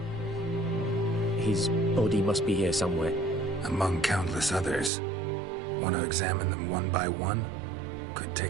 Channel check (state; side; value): drops out; left; at 4.9 s